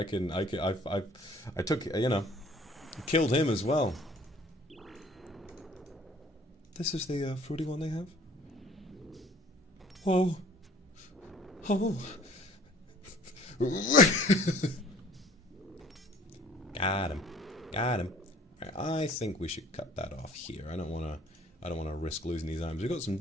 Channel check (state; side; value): normal; both; correlation 0.53